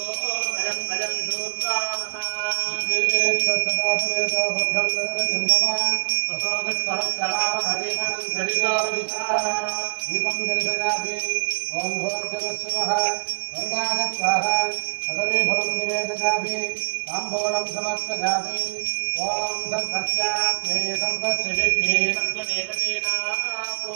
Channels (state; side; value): silent; left; 63 dB below the other